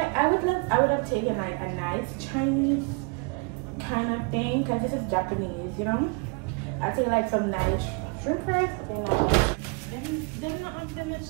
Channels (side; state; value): left; quieter; 32.1 dB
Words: would have taken like a nice Chinese kind of thing, because this is Japanese, I take like some nice shrimp fries, something like that. Them not have them much